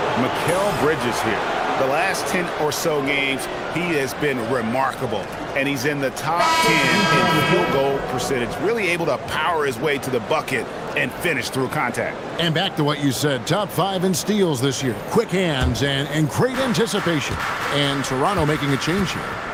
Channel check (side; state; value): both; identical; correlation 1.00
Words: Mikal Bridges here. The last 10 or so games, he has been remarkable. And he's in the top 10 in field goal percentage. Really able to power his way to the bucket and finish through contact. And back to what you said, top 5 in steals this year. Quick hands and great anticipation. And Toronto making a change here.